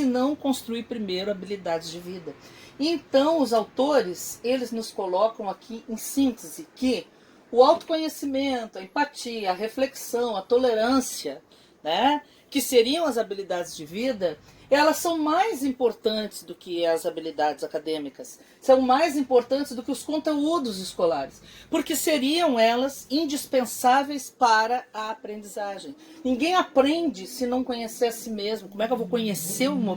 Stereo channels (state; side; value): identical; both; correlation 1.00